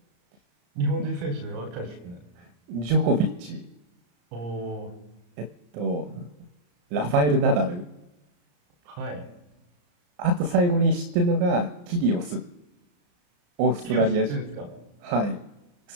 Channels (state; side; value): late; left; 34 ms